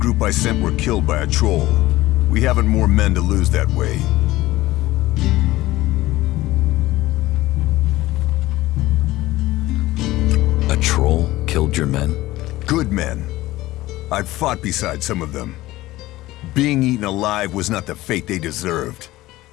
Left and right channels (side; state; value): right; quieter; 17.4 dB